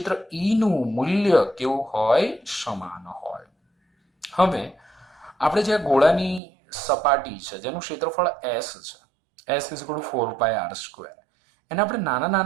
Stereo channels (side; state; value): left; drops out; at 6.4 s